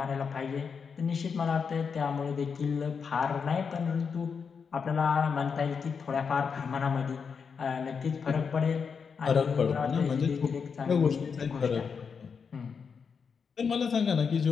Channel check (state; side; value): quieter; right; 6.0 dB